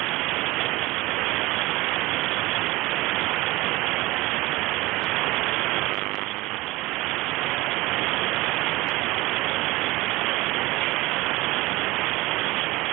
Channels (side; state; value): left; quieter; 20.7 dB